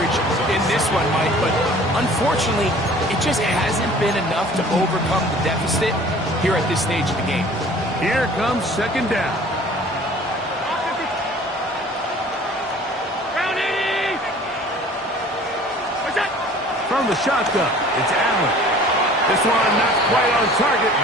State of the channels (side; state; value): both; normal; correlation 0.49